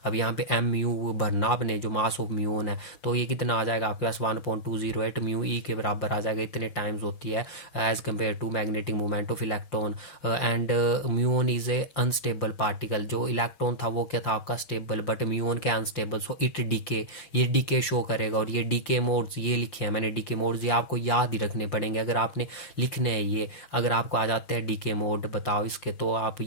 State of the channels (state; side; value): late; right; 5.8 ms